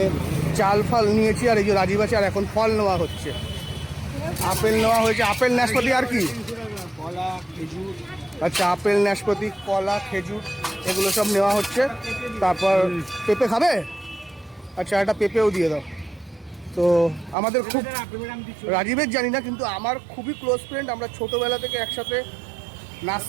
চাল ফাল নিয়েছি, আর এই যে রাজীব আছে, আর এখন ফল নেওয়া হচ্ছে। আপেল নেওয়া হয়েছে, আপেল নাশপাতি আর কি, কলা, খেজুর। আচ্ছা, আপেল নাশপাতি কলা খেজুর এগুলো সব নেওয়া হচ্ছে। তারপর পেঁপে খাবে? আচ্ছা, একটা পেঁপেও দিয়ে দাও। তো আমাদের খুব, রাজীবের জানি না, কিন্তু আমার খুবই ক্লোজ ফ্রেন্ড। আমরা ছোটোবেলা থেকে একসাথে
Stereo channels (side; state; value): left; drops out; at 17.4 s